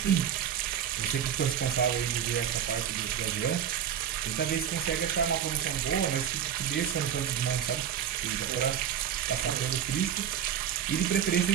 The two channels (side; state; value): left; quieter; 9.2 dB